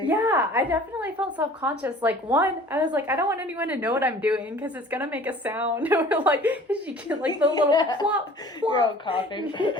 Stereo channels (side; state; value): both; normal; correlation 0.47